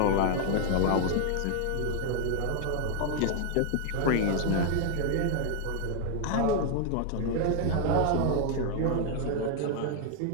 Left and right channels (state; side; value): different; both; correlation 0.00